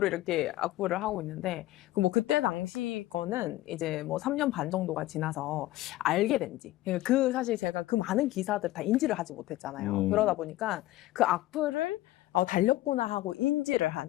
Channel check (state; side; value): quieter; right; 16.4 dB